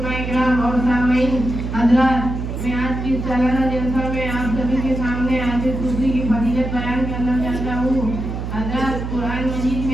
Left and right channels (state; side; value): noise; right; hum, 5 dB below the sound